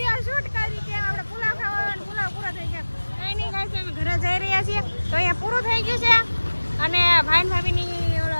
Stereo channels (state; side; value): inverted; both; correlation -1.00